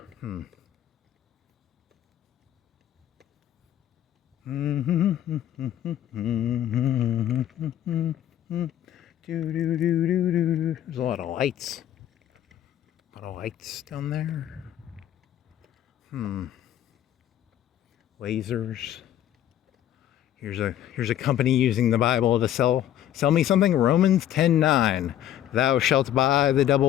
There's a lot of lights. A lot of lights down there. Lasers. Here's a company using the Bible to sell me something. Romans 10:9. Thou shalt buy the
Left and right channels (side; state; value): right; quieter; 11.6 dB